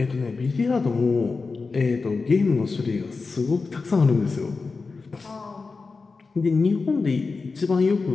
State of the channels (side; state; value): right; quieter; 4.3 dB